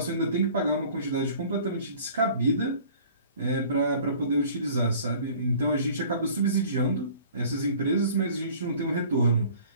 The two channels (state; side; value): inverted; both; correlation -0.50